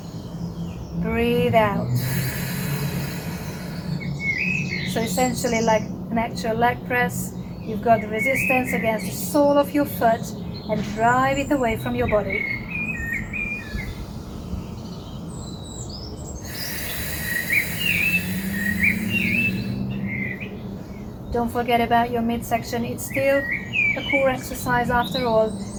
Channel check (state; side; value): identical; both; correlation 1.00